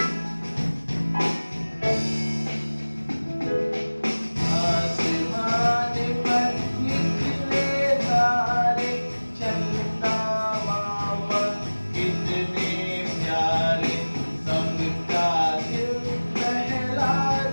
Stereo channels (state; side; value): inverted; both; correlation -1.00